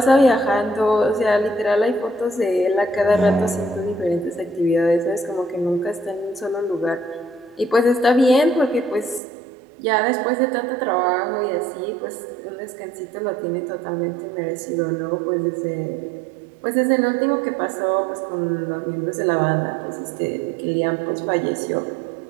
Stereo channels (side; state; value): left; drops out; at 9.2 s